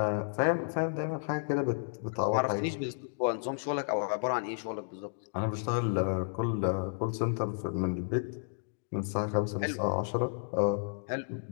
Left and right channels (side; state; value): right; silent; digital silence